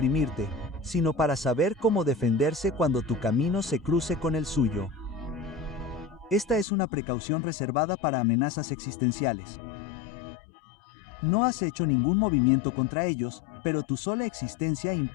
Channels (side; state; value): right; drops out; at 6.7 s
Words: sino para saber cómo defenderse cuando tu camino se cruce con el suyo. Esta es una precaución reservada para amenazas existenciales. No has hecho ningún movimiento contra ellos, pero tu sola existencia